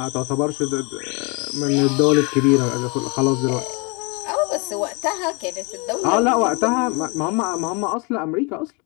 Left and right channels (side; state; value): right; quieter; 30.1 dB